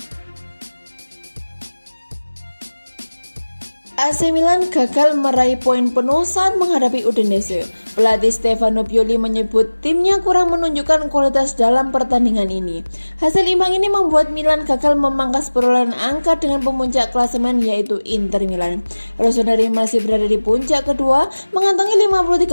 AC Milan gagal meraih poin penuh saat menghadapi Udinese. Pelatih Stefano Pioli menyebut timnya kurang menunjukkan kualitas dalam pertandingan ini. Hasil imbang ini membuat Milan gagal memangkas perolehan angka dengan pemuncak klasemen yaitu Inter Milan. Rossoneri masih berada di puncak kedua, mengantongi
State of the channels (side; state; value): both; inverted; correlation -1.00